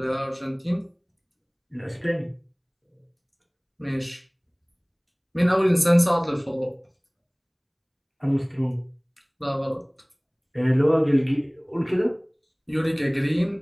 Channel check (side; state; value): both; identical; correlation 1.00